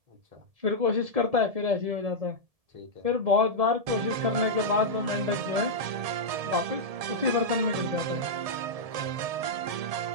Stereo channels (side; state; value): left; late; 1.7 ms